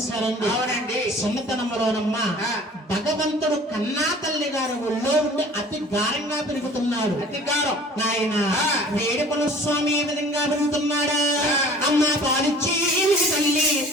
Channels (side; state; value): both; normal; correlation 0.48